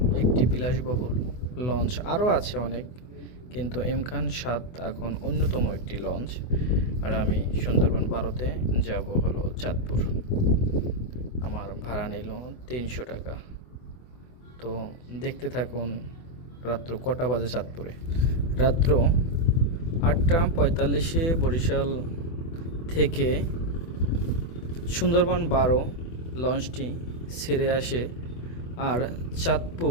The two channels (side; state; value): right; late; 24 ms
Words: একটি বিলাসবহুল লঞ্চ, আরও আছে অনেক, কিন্তু এম খান সাদ এখন অন্যতম একটি লঞ্চ। আর আমি সুন্দরবন 12-তে যাব হলো চাঁদপুর। আমার ভাড়া নিল 300 টাকা। তো দেখতে থাকুন রাত্র কটা বাজে চাঁদপুরে। রাত্র 8টা 45-এ বরিশাল থেকে সুন্দরবন 12 লঞ্চটি ছেড়ে আসে আর